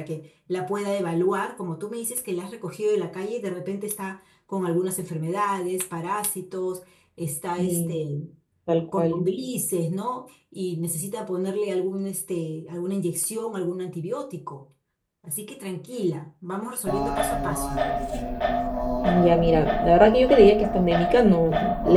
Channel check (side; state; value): both; identical; correlation 1.00